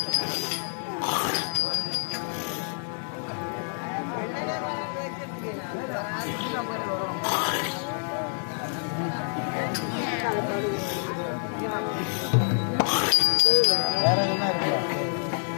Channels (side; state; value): right; silent; 60 dB below the other